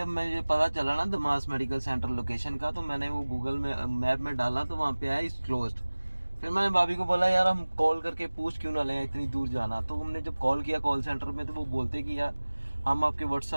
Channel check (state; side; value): inverted; both; correlation -1.00